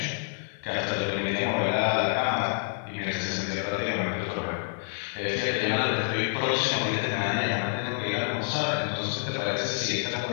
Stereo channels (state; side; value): silent; right; 57 dB below the other